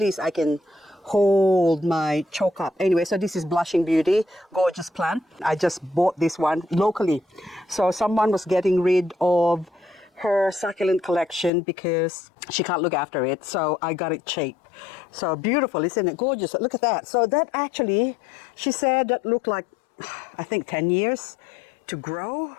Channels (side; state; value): right; drops out; at 11.5 s